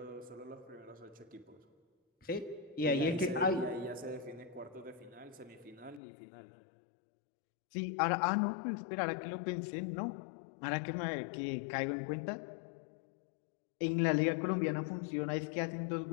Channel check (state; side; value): drops out; right; at 6.0 s